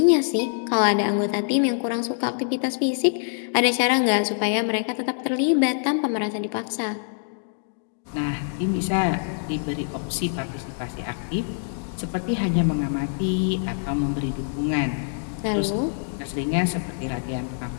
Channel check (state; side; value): silent; right; digital silence